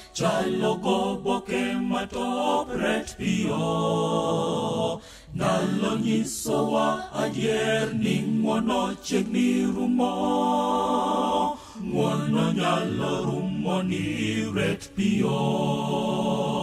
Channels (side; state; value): both; identical; correlation 1.00